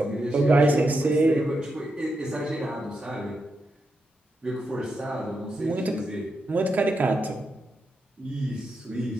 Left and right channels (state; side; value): normal; both; correlation 0.85